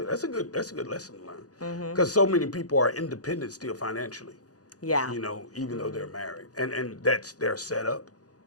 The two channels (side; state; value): right; late; 0.67 ms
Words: That's a good lesson to learn. Because so many people are independent still financially. Yeah. Even though they're married, and that's their setup.